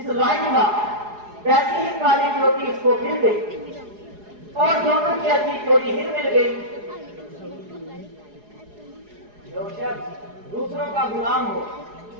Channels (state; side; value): late; left; 4.8 ms